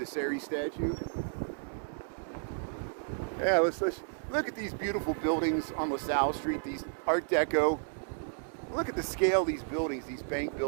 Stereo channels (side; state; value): left; silent; digital silence